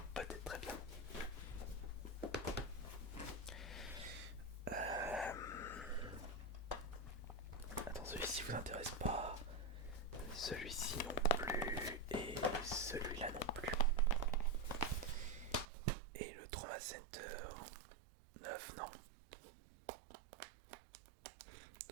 Peut-être, très bien. Attends, celui-ci vous intéresse pas. Celui-ci non plus. Et celui-là non plus. Et le Trauma Center 9, non.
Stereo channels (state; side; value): drops out; left; at 15.7 s